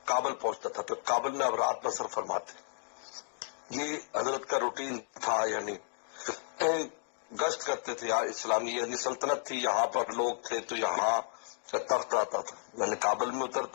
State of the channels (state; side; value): silent; right; digital silence